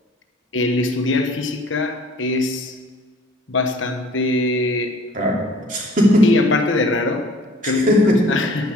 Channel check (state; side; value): normal; both; correlation 0.53